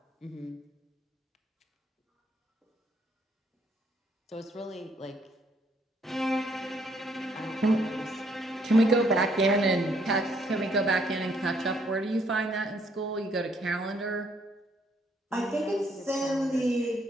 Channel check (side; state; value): both; normal; correlation 0.68